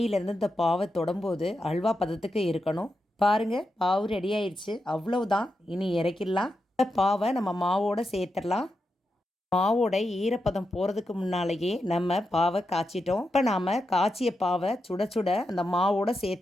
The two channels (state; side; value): normal; both; correlation 0.87